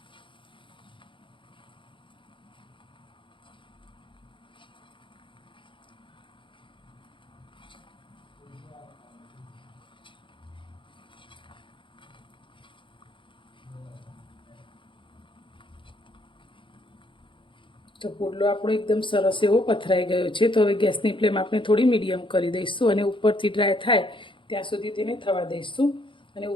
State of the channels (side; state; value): right; late; 0.24 ms